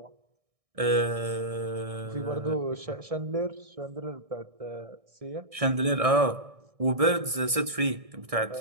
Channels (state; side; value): late; left; 1.6 ms